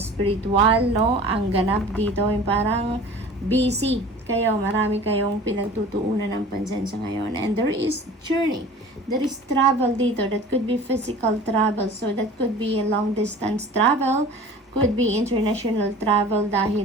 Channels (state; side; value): normal; both; correlation 0.42